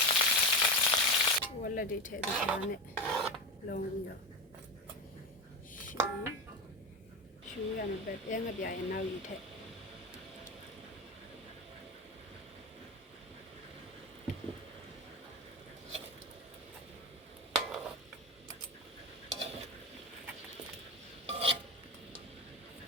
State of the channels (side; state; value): both; normal; correlation 0.21